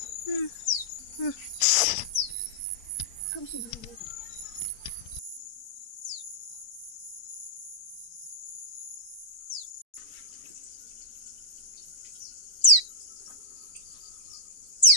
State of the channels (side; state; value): right; late; 4.2 ms